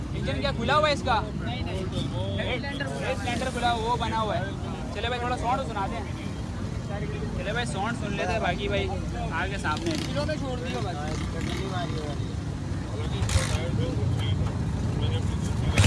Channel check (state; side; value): identical; both; correlation 1.00